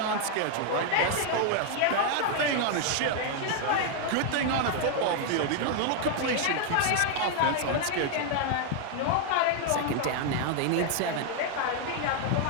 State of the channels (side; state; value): both; different; correlation 0.00